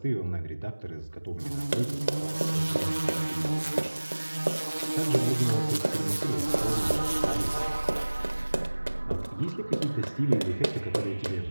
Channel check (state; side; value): inverted; both; correlation -1.00